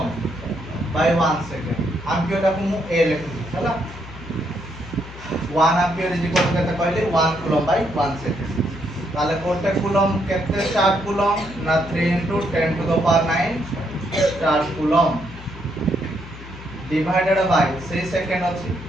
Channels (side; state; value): left; noise; hum, 14 dB below the sound